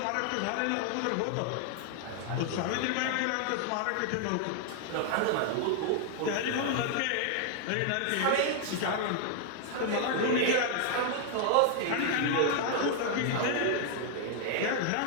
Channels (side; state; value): both; different; correlation 0.00